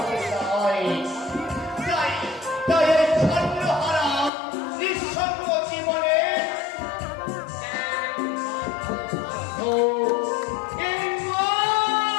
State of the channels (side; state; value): right; drops out; at 4.3 s